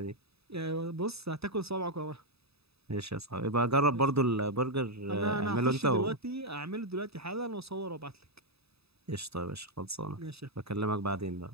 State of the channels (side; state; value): left; late; 0.78 ms